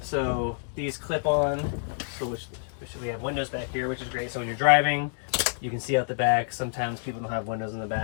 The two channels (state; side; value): silent; right; digital silence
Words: So these clip on, which we have windows back here, which is great. So when you're driving, you can see out the back. Sometimes people don't have windows in the